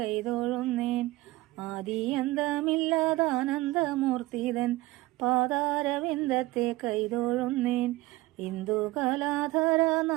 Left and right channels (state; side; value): quieter; left; 19.3 dB